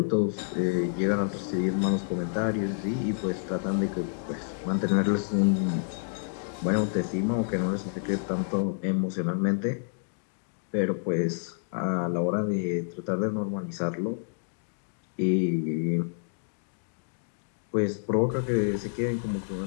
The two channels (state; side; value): silent; right; digital silence